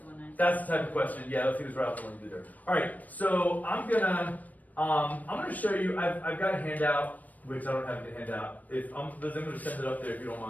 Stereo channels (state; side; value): late; right; 0.078 ms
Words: one I. That's the type of question. Yeah, let's see who's right off the one to do there. All right, so I'm gonna show you. I've got a handout, which I don't have the handout. If I'm gonna send it up there if you don't